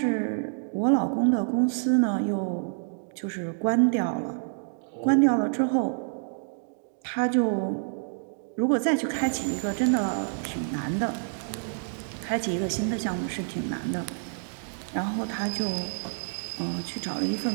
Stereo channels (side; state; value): left; silent; digital silence